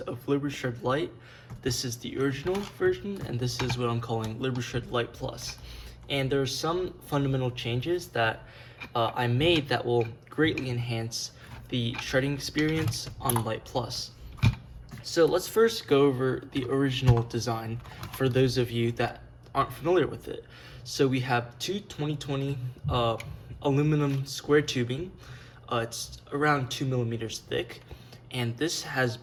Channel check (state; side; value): identical; both; correlation 1.00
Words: LibreShred Lite. This is the original version and this is what I'm calling LibreShred Lite Plus. And there are some fundamental changes that I made that will greatly enhance the shredding experience on Lite Plus. So let's first go over the original design for those of you that aren't familiar with it. So we have two 2020 aluminum square tubing. It's around 2 millimeters thick, and this has